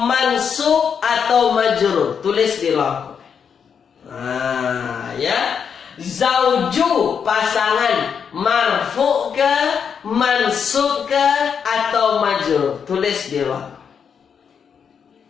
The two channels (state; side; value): quieter; right; 7.0 dB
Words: mansub atau majrur. Tulis di ruang komen. Ya. Zauju pasangan, marfu ke, mansub ke atau majrur? Tulis di ruang.